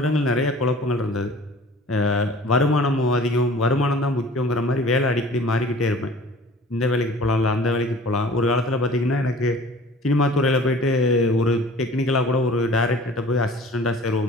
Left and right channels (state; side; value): normal; both; correlation 0.46